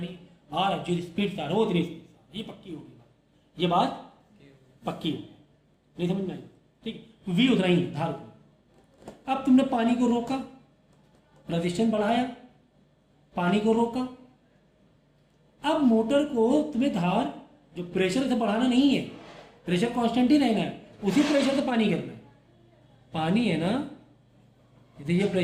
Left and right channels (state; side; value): identical; both; correlation 1.00